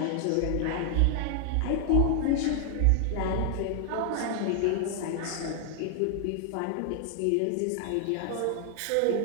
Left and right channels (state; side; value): different; both; correlation 0.00